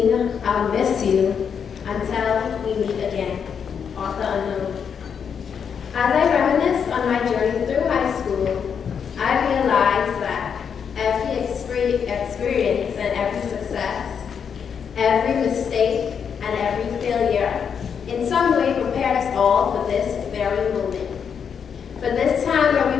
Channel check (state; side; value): quieter; right; 7.1 dB